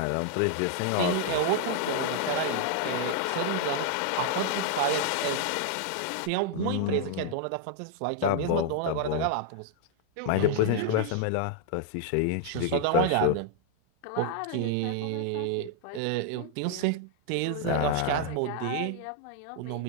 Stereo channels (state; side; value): different; both; correlation 0.00